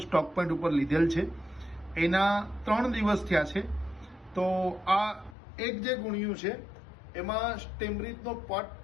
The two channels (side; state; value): right; drops out; at 5.4 s